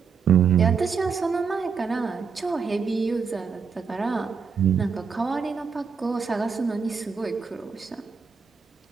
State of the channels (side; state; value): left; quieter; 5.8 dB